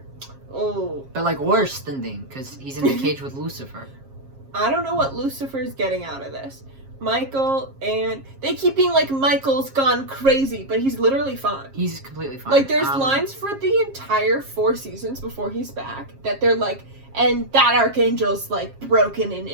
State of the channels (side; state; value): left; late; 7.4 ms